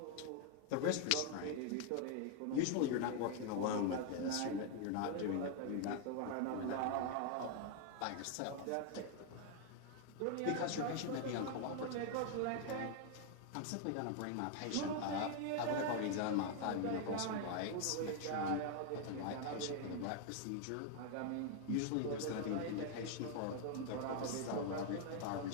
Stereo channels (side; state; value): both; different; correlation 0.00